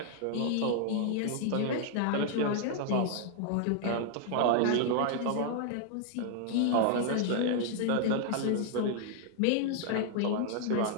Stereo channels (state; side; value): different; both; correlation 0.00